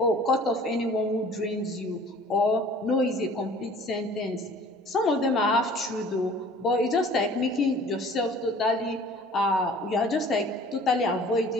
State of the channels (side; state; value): both; normal; correlation 0.49